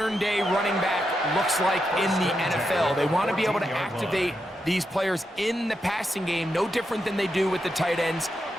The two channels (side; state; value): both; normal; correlation 0.85